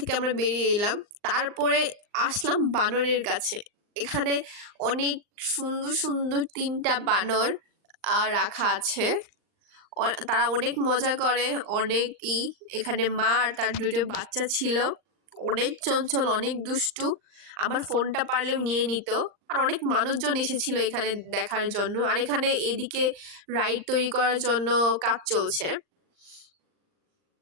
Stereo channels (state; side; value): late; left; 39 ms